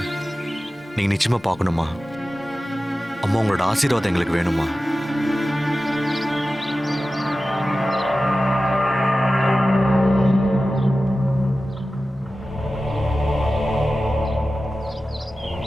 நீங்க நிச்சயமா பார்க்கணுமா? அம்மா, உங்களோட ஆசீர்வாதம் எங்களுக்கு வேணுமா?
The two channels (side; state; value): both; normal; correlation 0.94